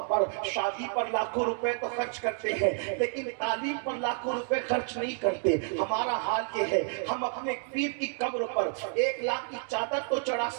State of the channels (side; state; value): left; silent; 58 dB below the other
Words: شادی پر لاکھوں روپے تو خرچ کرتے ہیں لیکن تعلیم پر لاکھوں روپے خرچ نہیں کرتے. ہمارا حال یہ ہے ہم اپنے پیر کی قبر پر 1 لاکھ کی چادر تو چڑھا